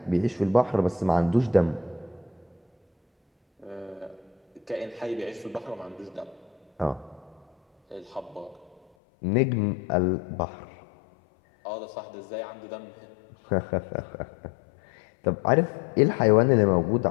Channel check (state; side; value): drops out; right; at 8.8 s